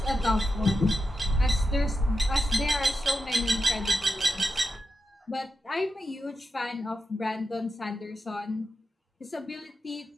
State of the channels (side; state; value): both; normal; correlation 0.88